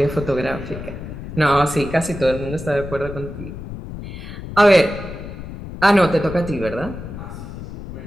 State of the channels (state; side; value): noise; left; rumble, 10 dB below the sound